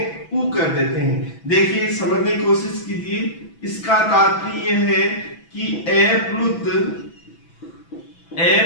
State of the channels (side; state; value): right; late; 6.0 ms